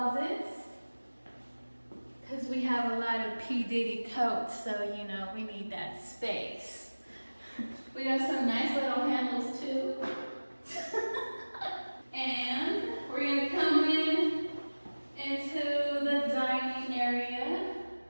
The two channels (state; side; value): inverted; both; correlation -1.00